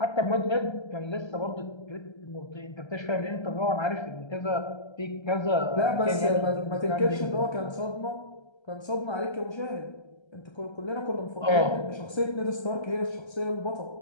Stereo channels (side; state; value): right; late; 1.3 ms